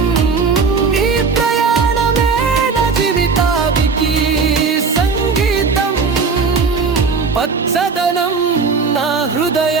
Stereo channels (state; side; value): quieter; left; 4.9 dB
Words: ఈ ప్రయాణమే నా జీవితానికి సంగీతం, పచ్చదనం నా